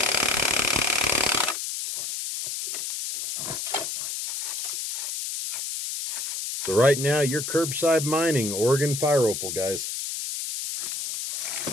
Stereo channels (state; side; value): noise; left; hiss, 4 dB below the sound